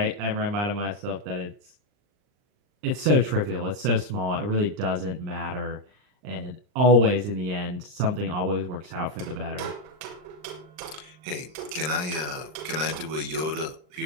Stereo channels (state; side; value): late; left; 39 ms